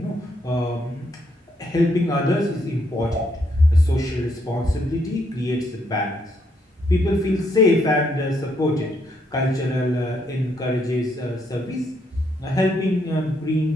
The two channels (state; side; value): normal; both; correlation 0.74